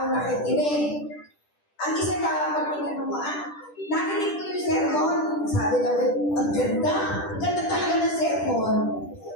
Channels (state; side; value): late; right; 10 ms